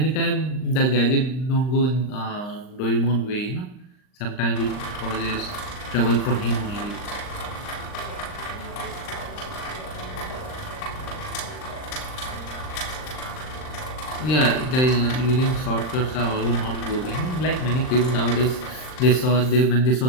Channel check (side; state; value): right; late; 39 ms